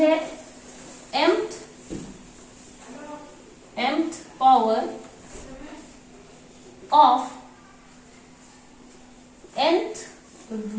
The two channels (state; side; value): identical; both; correlation 1.00